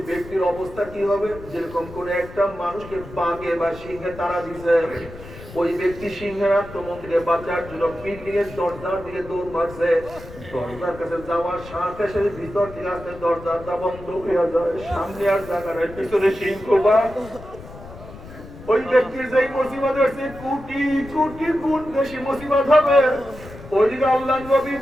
ব্যক্তির অবস্থা কি হবে? যেরকম কোন একটা মানুষকে বাঘে বা সিংহে তাড়া দিছে, ওই ব্যক্তি সিংহের আক্রমণ থেকে বাঁচার জন্য বিল্ডিং এর দরজার দিকে দৌড় মারছে। দরজার কাছে যাওয়ার সাথে সাথে ভিতর থেকে আসতে দরজাটা বন্ধ হয়ে যায়। সামনে আর জায়গা নাই, পিছনে সিংহ বা ওই ব্যক্তির যেই মুসিবত হচ্ছে কোটি কোটি গুণ বেশি মুসিবত হবে। ওইদিকে আল্লাহর নবী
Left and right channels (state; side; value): noise; left; rumble, 16 dB below the sound